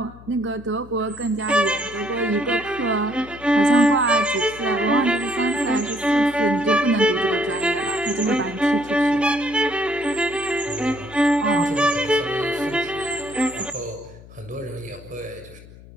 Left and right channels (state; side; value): noise; left; hum, 20 dB below the sound